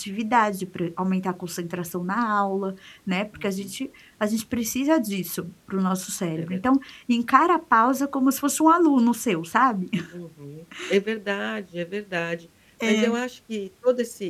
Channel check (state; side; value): identical; both; correlation 1.00